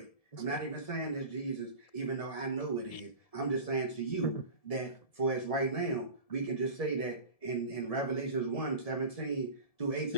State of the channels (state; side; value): late; right; 1.7 ms